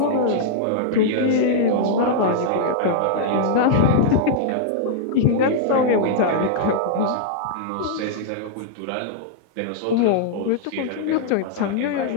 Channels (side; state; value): both; different; correlation -0.02